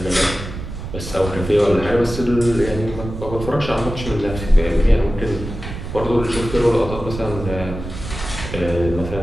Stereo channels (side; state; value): right; noise; rumble, 9 dB below the sound